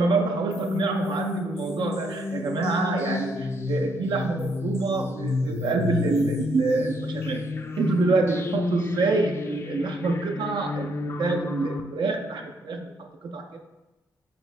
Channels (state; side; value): normal; both; correlation 0.71